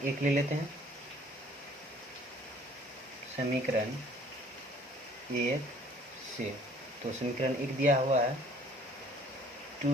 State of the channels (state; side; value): normal; both; correlation 0.56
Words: 1 ले लेते हैं। समीकरण 1 से तो समीकरण 1 दिया हुआ है